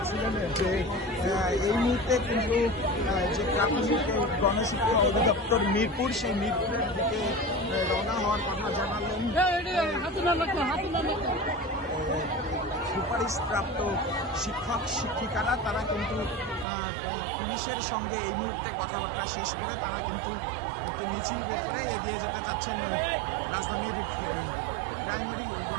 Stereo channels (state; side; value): drops out; left; at 16.7 s